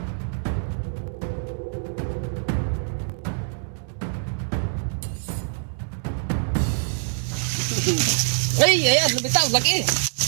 Ay, ayan, lumitaw, laki.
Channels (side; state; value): left; silent; 62 dB below the other